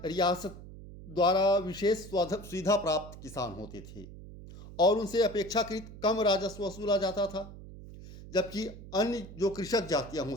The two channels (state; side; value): noise; right; hum, 15 dB below the sound